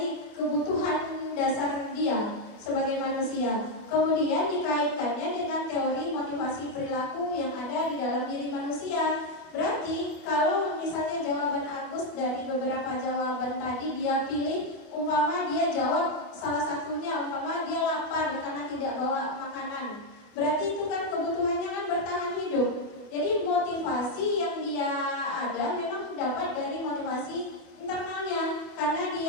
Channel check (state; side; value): late; right; 25 ms